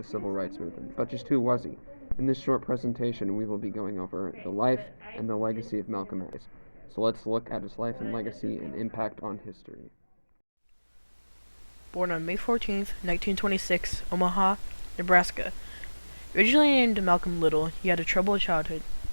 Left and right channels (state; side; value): inverted; both; correlation -1.00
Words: civil rights movement, but just who was he? In this short presentation, we will be going over the life and the legacy of Malcolm X. So let's look at his life and legacy and impact on history. Born on May 14, 1926, Omaha, Nebraska. Originally named Malcolm Little, he had a troubled childhood.